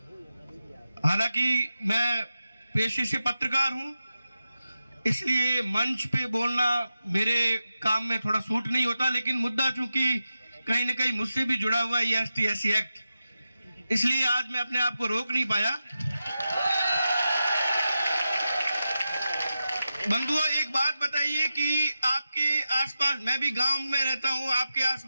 हालांकि मैं पेशे से पत्रकार हूं, इसलिए मंच पे बोलना मेरे काम में थोड़ा सूट नहीं होता, लेकिन मुद्दा चूंकि कहीं ना कहीं मुझसे भी जुड़ा हुआ है ये ST/SC एक्ट, इसलिए आज मैं अपने आप को रोक नहीं पाया। बंधुओं, एक बात बताइए कि आपके आसपास, मैं भी गांव में रहता हूं, आपके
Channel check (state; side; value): inverted; both; correlation -0.91